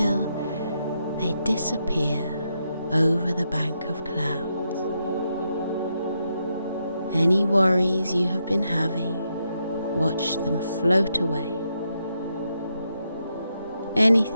they disappear over the bank of clouds. Any worries you have been having, watch them float away.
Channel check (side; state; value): both; inverted; correlation -0.82